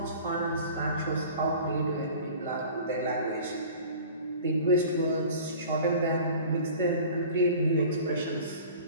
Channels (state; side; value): inverted; both; correlation -0.43